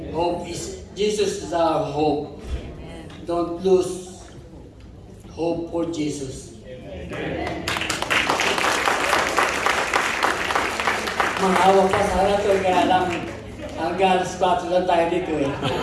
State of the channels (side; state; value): both; identical; correlation 1.00